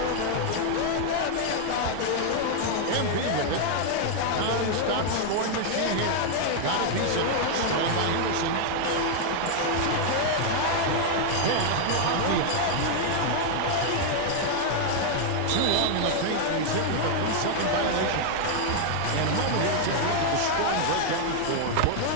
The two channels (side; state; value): both; different; correlation 0.00